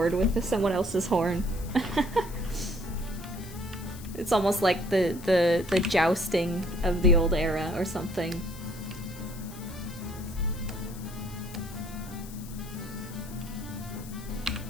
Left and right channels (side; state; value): left; noise; hiss, 17 dB below the sound